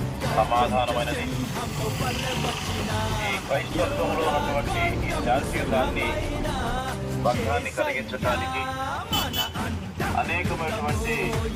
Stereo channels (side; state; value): both; identical; correlation 1.00